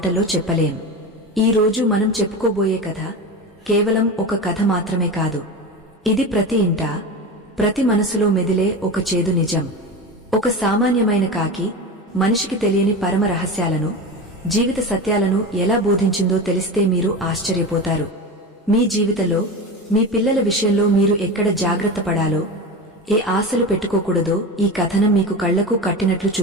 చెప్పలేం. ఈ రోజు మనం చెప్పుకోబోయే కథ కేవలం ఒక కథ మాత్రమే కాదు. ఇది ప్రతి ఇంటా ప్రతి మనసులో మెదిలే ఒక చేదు నిజం. ఒక సామాన్యమైన కాకి మనిషికి తెలియని పరమ రహస్యాలను, జీవిత సత్యాలను ఎలా బోధించిందో తెలిస్తే మీరు ఆశ్చర్యపోతారు. మీ జీవితంలో మీ పిల్లల విషయంలో మీరు ఎక్కడ జాగ్రత్త పడాలో, ఏ ఆశలు పెట్టుకోకూడదో ఈ కథనం మీకు కళ్లకు కట్టినట్లు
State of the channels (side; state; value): both; normal; correlation 0.25